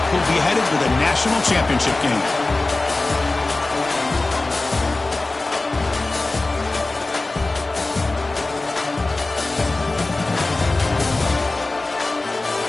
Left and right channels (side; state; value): right; quieter; 3.1 dB